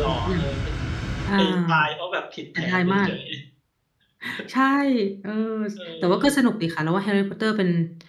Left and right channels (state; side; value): identical; both; correlation 1.00